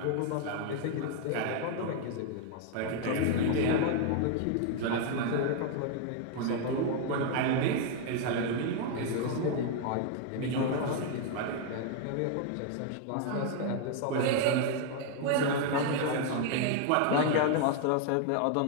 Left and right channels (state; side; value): different; both; correlation 0.00